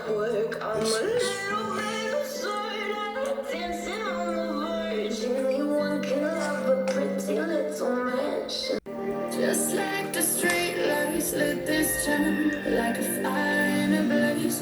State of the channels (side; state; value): both; identical; correlation 1.00